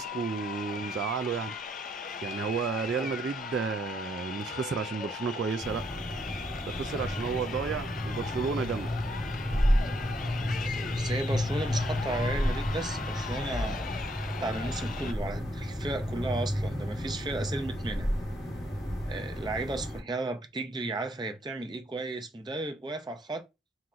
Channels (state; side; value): normal; both; correlation 0.72